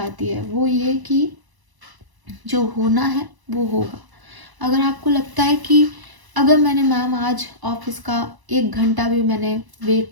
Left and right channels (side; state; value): left; late; 1.0 ms